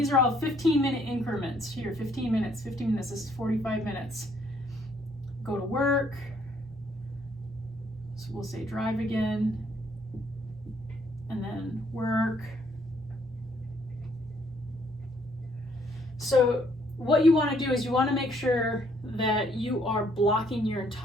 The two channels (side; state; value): both; normal; correlation 0.67